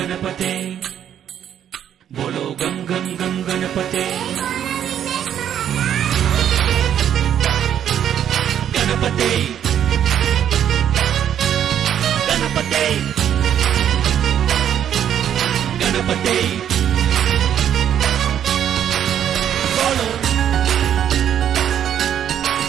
बोलो गम गम गम गणपते गणपते गणपते गणपते बोलो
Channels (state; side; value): quieter; left; 9.8 dB